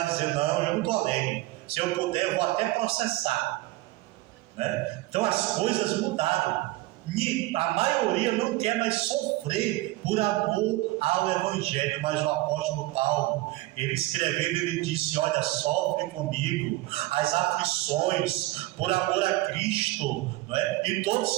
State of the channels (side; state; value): left; quieter; 18.6 dB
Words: dizer: não, eu não estou alegre. Se eu puder, eu vou até processar. Então as coisas mudaram. A maioria não quer mais sofrer por amor ao Evangelho. Mas o apóstolo Paulo, ele escrevendo, ele disse: olha, sofre comigo as aflições por amor a Cristo, e todos